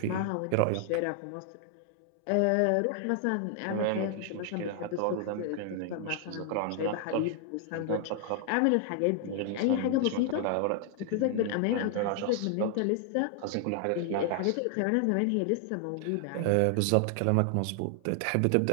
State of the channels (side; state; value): both; different; correlation 0.00